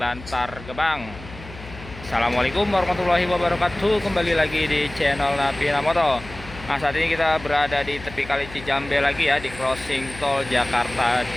Gebang. Assalamualaikum warahmatullahi wabarakatuh. Kembali lagi di channel Napina Moto. Nah, saat ini kita berada di tepi Kali Cijambe lagi ya, di crossing tol Jakarta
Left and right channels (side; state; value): left; noise; hum, 16 dB below the sound